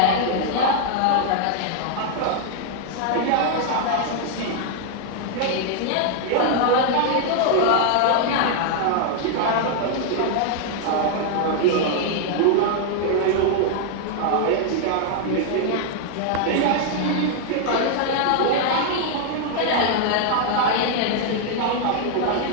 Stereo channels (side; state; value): both; different; correlation 0.00